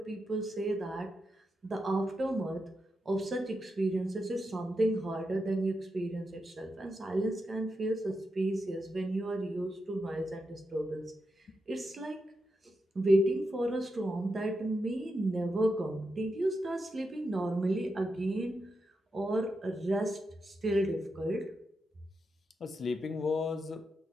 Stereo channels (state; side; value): normal; both; correlation 0.86